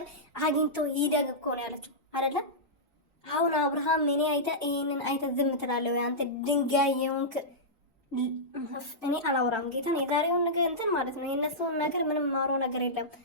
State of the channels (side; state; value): both; normal; correlation -0.13